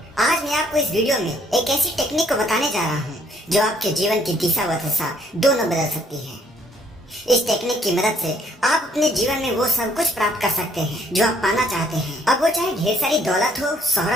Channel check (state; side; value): normal; both; correlation 0.65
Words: आज मैं आपको इस वीडियो में एक ऐसी टेक्निक को बताने जा रहा हूँ जो आपके जीवन की दिशा व दशा दोनों बदल सकती है। इस टेक्निक की मदद से आप अपने जीवन में वो सब कुछ प्राप्त कर सकते हैं जो आप पाना चाहते हैं। अब वो चाहे ढेर सारी दौलत हो,